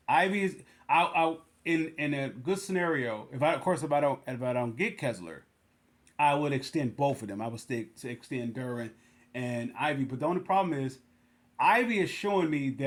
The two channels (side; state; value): both; identical; correlation 1.00